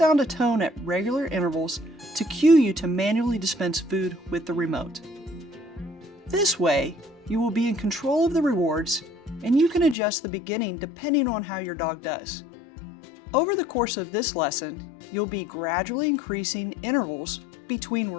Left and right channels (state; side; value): drops out; right; at 10.0 s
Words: a tone at regular intervals to cue you to manually dispense food with the remote. This way, you will be in control of the rewards, and you can adjust the beginning depending on how your dog does. Over the course of this lesson, you'll be gradually increasing intervals between